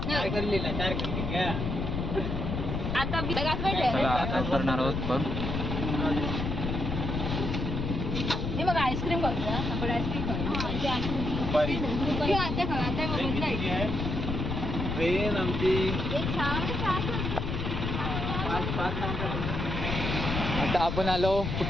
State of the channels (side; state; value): left; noise; rumble, 2 dB below the sound